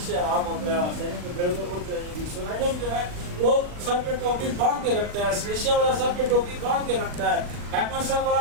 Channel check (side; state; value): left; late; 40 ms